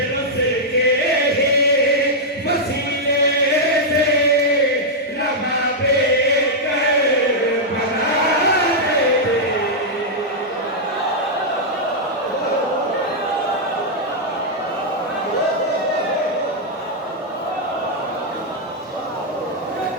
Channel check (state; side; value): normal; both; correlation -0.05